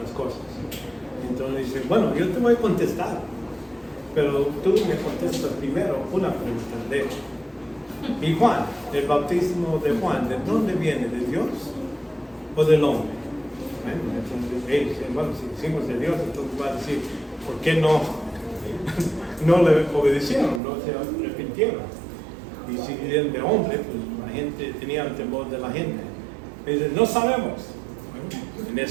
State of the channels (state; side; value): drops out; left; at 20.6 s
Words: cosas? Entonces dice, bueno, yo te voy a contestar, pero tú me contestas primero una pregunta. ¿Y Juan, el bautismo de Juan, de dónde viene? ¿De Dios o del hombre? Entonces ellos dicen, bueno, si decimos de Dios, entonces va a decir, ¿por qué no le obedecieron, no se arrepintieron? Y si eran de hombre, pues la gente tenía el temor de la gente. Y dicen, no sabemos. Bueno, en